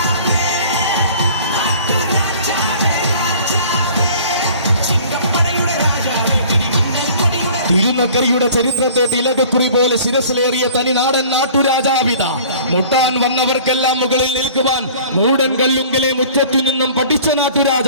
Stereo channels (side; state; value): both; inverted; correlation -0.48